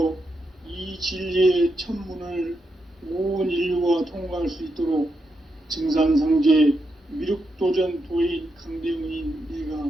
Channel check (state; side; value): normal; both; correlation 0.84